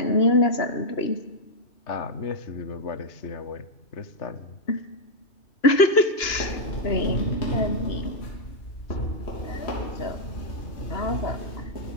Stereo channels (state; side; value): late; right; 2.9 ms